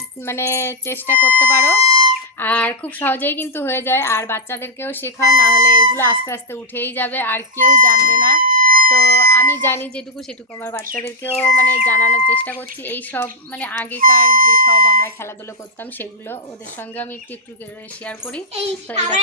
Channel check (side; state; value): both; normal; correlation -0.04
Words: মানে চেষ্টা করতে পারো, আর খুব সহজেই কিন্তু হয়ে যায়। আর বাচ্চাদেরকেও শেখাও, না হলে এগুলো আস্তে আস্তে উঠেই যাবে আর কেউ জানবে না। তো আমি জানি যেটুকু সেটুকু আমার বাচ্চাদেরকেও মানে জানানোর চেষ্টা করছি। এই সব মানে আগেকার যে সব আমরা খেলাধুলো করতাম সেগুলো ওদের সঙ্গে আমি একটু একটু শেয়ার করি। তো এই